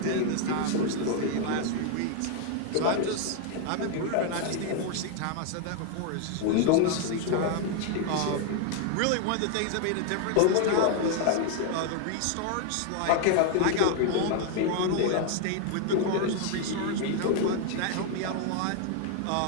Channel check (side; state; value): both; different; correlation 0.00